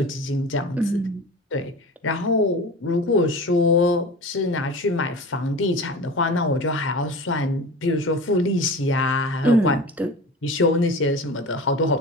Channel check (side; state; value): both; normal; correlation 0.34